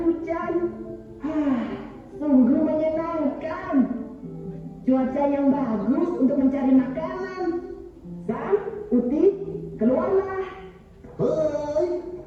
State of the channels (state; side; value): identical; both; correlation 1.00